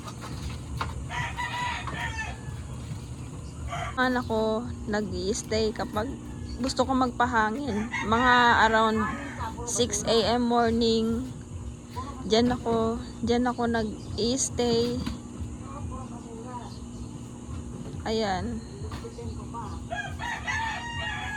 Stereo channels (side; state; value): both; identical; correlation 1.00